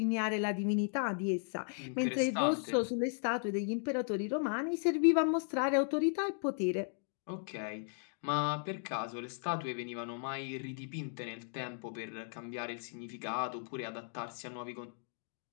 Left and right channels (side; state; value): right; silent; 54 dB below the other